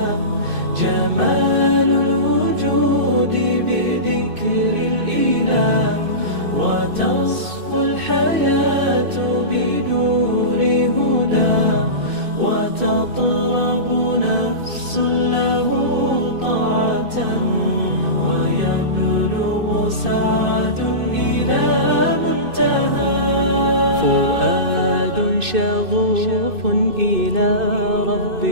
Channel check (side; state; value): left; late; 2.6 ms